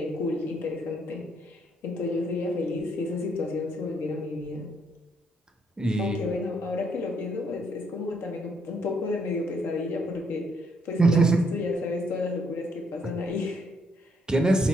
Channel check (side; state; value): both; normal; correlation 0.72